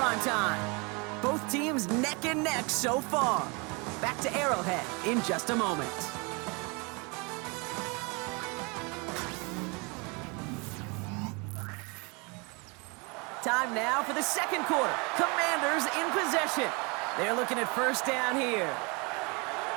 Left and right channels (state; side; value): quieter; left; 30.0 dB